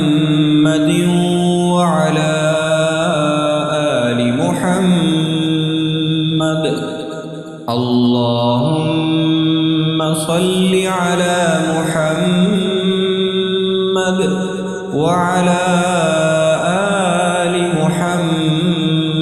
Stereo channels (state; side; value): identical; both; correlation 1.00